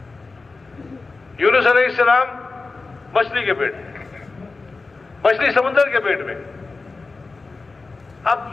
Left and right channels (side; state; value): right; quieter; 3.8 dB